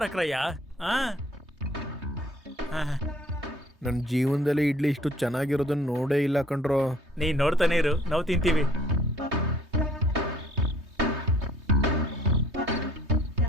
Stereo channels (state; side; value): normal; both; correlation 0.57